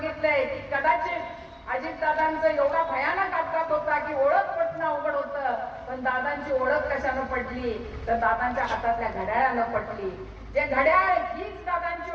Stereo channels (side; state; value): both; identical; correlation 1.00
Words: की कदाचित अजितदादांचं एवढा भयानक अपघात होता की ओळख पटणं अवघड होतं, पण दादांची ओळख कशानं पडली तर दादांच्या हातातल्या घड्याळानं पडली। जे घड्याळ हीच